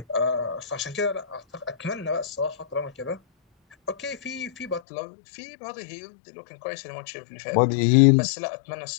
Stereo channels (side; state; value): right; drops out; at 4.8 s